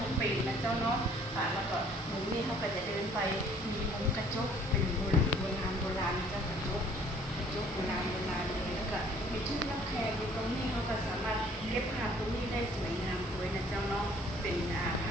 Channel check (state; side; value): normal; both; correlation 0.57